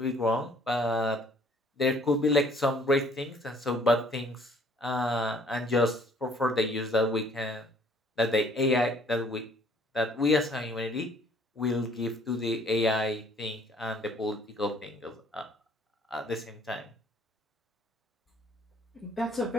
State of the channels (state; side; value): normal; both; correlation 0.60